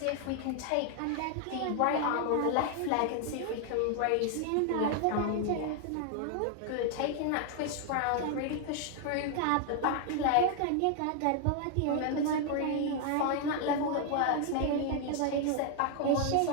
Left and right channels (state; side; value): different; both; correlation 0.00